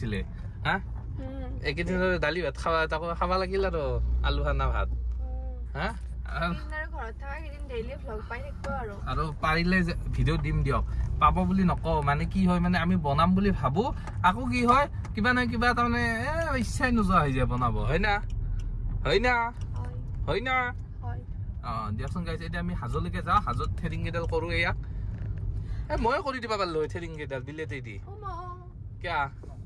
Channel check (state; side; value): identical; both; correlation 1.00